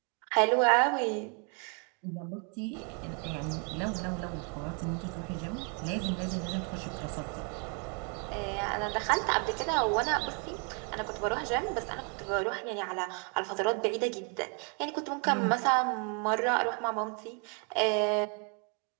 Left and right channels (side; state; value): left; quieter; 37.8 dB